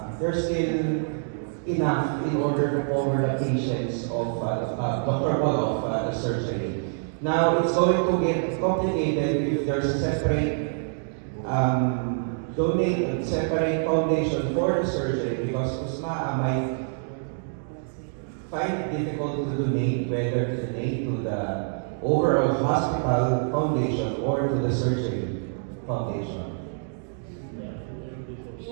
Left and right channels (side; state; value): left; silent; digital silence